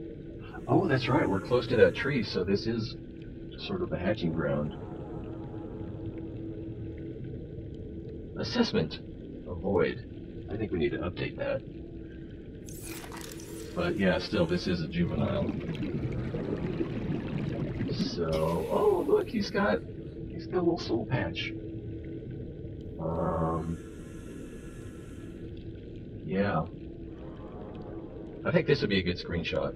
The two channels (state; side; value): identical; both; correlation 1.00